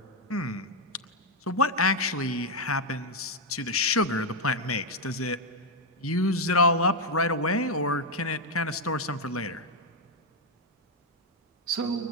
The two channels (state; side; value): normal; both; correlation 0.02